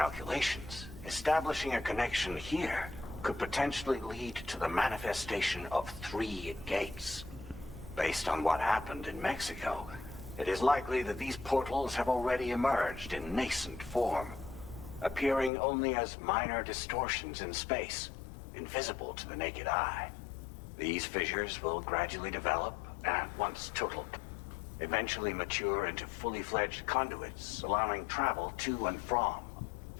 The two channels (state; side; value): drops out; right; at 15.5 s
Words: establishing a connection here could potentially lead to the manifestation of 3 gates. Based on what happened in Mexico, it is likely that these portals have already emerged in nascent form, appearing only as minor distortions in space, invisible to the naked eye. These fissures will gradually develop, and once total, eventually mature into fully fledged conduits, allowing travel to and from.